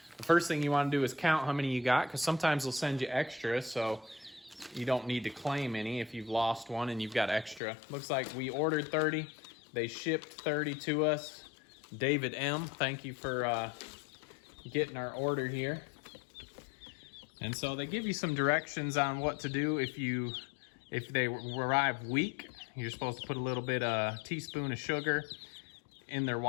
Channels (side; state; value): right; drops out; at 7.6 s